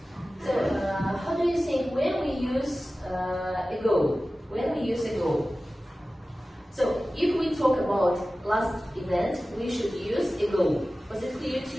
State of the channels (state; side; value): normal; both; correlation 0.96